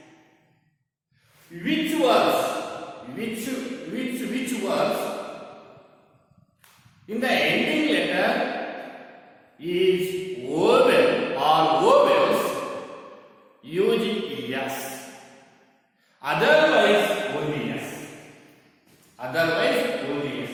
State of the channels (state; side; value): identical; both; correlation 1.00